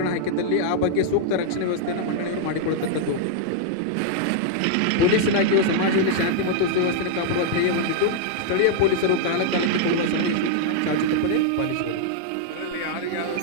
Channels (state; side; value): different; both; correlation -0.01